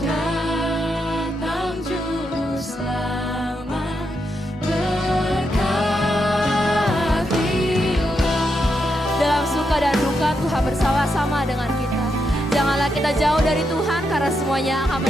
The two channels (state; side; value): normal; both; correlation 0.82